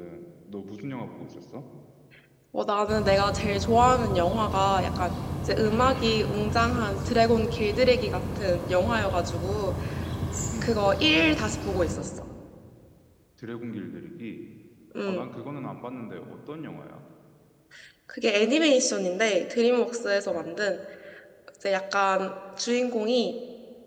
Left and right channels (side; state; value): both; identical; correlation 1.00